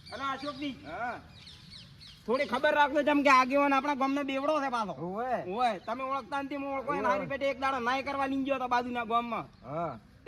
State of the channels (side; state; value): both; identical; correlation 1.00